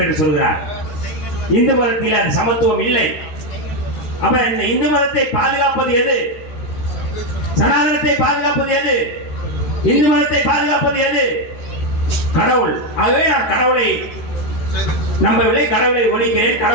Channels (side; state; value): right; late; 13 ms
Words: என்று சொல்கிறார். இந்து மதத்தில் அது சமத்துவம் இல்லை. அப்ப இந்த இந்து மதத்தை பாதுகாப்பது எது? சனாதனத்தை பாதுகாப்பது எது? இந்து மதத்தை பாதுகாப்பது எது? கடவுள். ஆகவே நான் கடவுளை நம்பவில்லை, கடவுளை ஒழிக்கிறேன்,